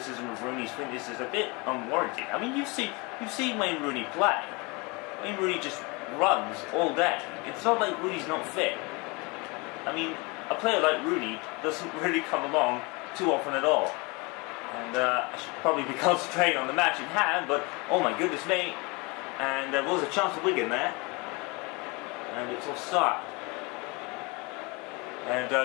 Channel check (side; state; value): right; quieter; 27.6 dB